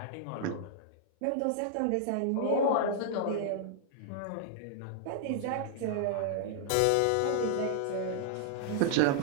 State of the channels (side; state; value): both; different; correlation -0.01